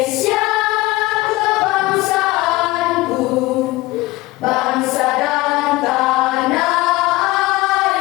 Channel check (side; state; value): right; quieter; 19.8 dB